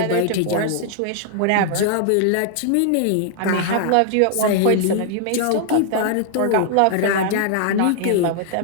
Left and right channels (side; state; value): both; different; correlation 0.00